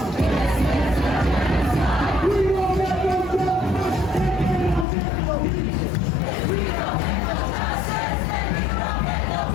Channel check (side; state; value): right; drops out; at 4.9 s